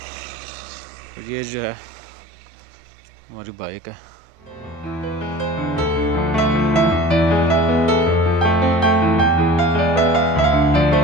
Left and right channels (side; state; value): both; normal; correlation 0.41